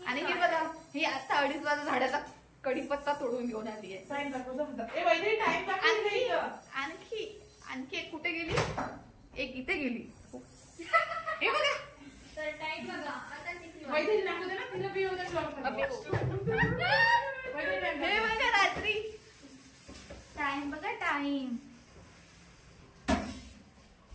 आणि हे बघा ही आता 2:30 वाजता झाडाचा कढीपत्ता तोडून घेऊन आली आहे. आणखी एक कुठे गेली, एक इथे गेली. हे बघा टाइम बघा आता हे बघा रात्री टाइम बघा टाइम.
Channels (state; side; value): identical; both; correlation 1.00